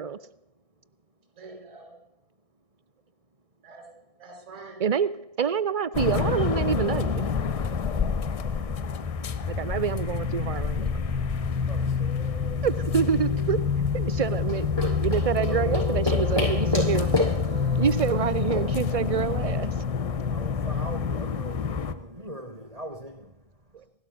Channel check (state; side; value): late; left; 1.6 ms